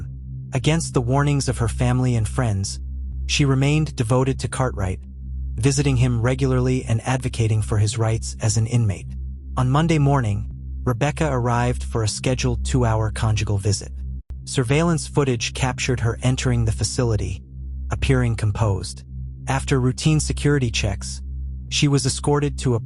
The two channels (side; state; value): both; identical; correlation 1.00